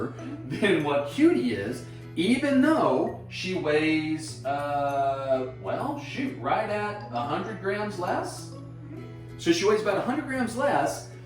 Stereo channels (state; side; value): identical; both; correlation 1.00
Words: than what Cutie is, even though she weighs, right at 100 grams less. So she weighs about 100 grams less,